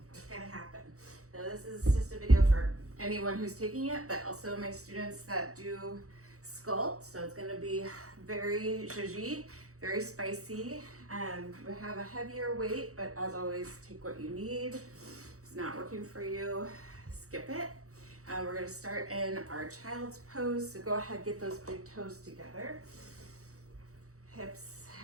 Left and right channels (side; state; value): left; late; 0.65 ms